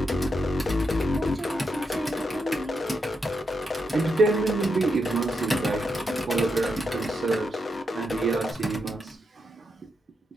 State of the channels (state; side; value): normal; both; correlation 0.83